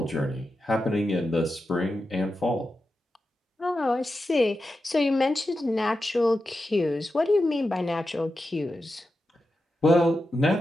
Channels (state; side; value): normal; both; correlation 0.90